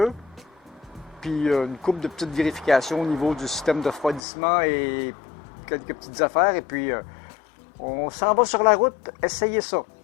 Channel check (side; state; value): right; drops out; at 4.2 s